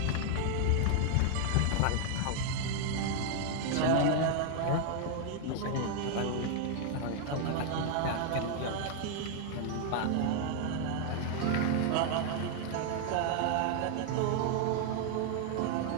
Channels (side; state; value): both; different; correlation 0.00